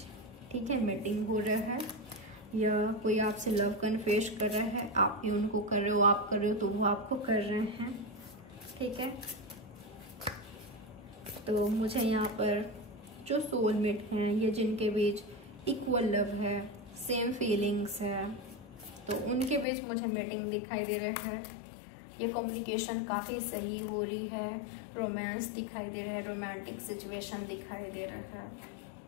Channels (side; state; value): right; drops out; at 19.7 s